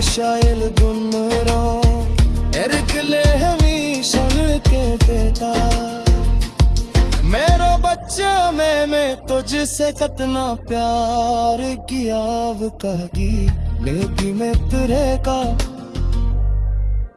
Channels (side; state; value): both; identical; correlation 1.00